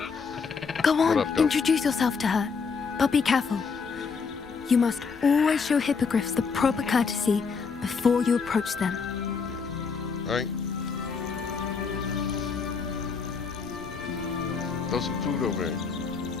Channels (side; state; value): right; quieter; 5.4 dB